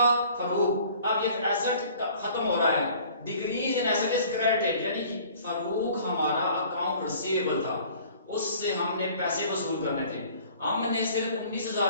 फरूक, अब ये एसेट खत्म हो रहा है, decrease in asset is credited, यानी कि फरूक हमारा अकाउंट रिसीवेबल था, उससे हमने पैसे वसूल करने थे। हमने सिर्फ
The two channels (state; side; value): inverted; both; correlation -0.51